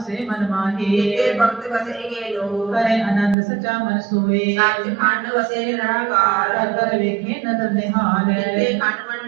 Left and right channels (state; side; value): drops out; left; at 3.4 s